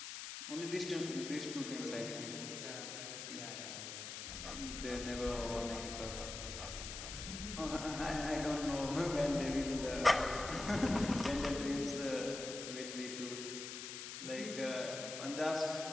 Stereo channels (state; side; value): noise; left; hiss, 7 dB below the sound